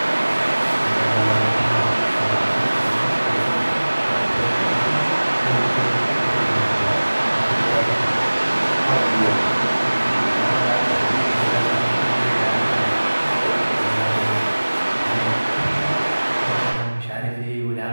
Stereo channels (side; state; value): both; inverted; correlation -1.00